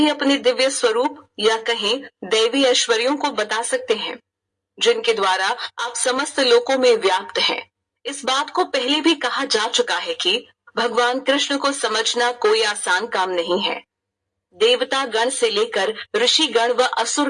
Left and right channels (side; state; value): both; identical; correlation 1.00